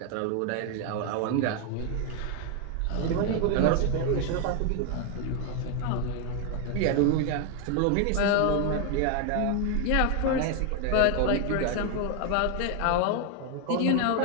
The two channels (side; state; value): both; different; correlation 0.01